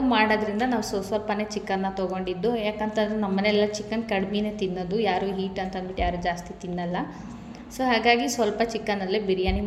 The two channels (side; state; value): both; identical; correlation 1.00